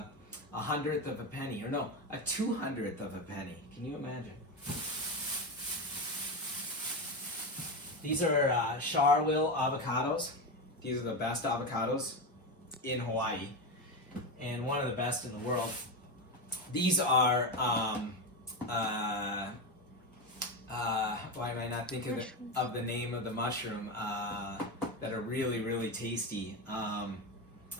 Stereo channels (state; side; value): normal; both; correlation 0.15